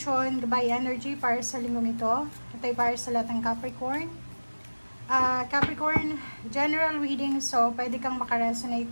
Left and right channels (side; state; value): both; inverted; correlation -1.00